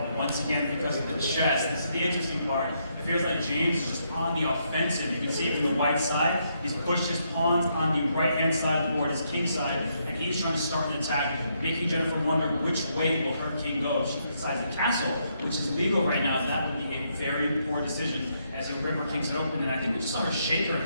once again because of the chest. This is the interesting part. It feels like James is just on the offensive. You can see it from the white side. He's pushed his pawns on the right-hand side of the board, his king side, and he's trying to start an attack, making Jennifer wonder which way will her king go if she decides to castle, which is legal right now. That would be a very poor decision as the river kings it open, and I think we just saw her shake her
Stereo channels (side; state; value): both; inverted; correlation -0.76